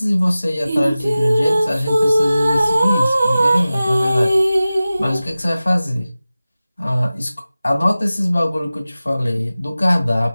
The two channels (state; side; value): inverted; both; correlation -0.96